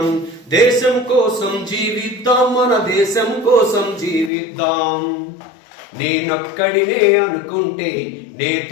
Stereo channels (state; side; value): drops out; right; at 4.3 s